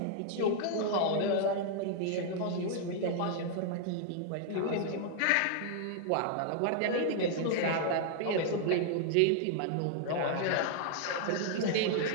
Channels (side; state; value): both; different; correlation 0.00